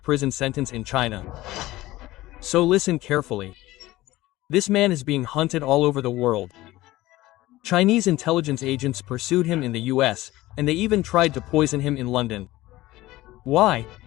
sentence in China. So listen carefully. This man is being hunted all over the world. Chinese intelligence agents pursued him in the US, and they even tried to poison him in London. Why?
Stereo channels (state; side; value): quieter; right; 17.5 dB